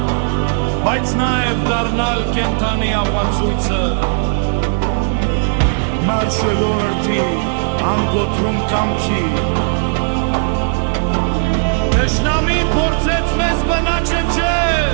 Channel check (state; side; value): silent; left; digital silence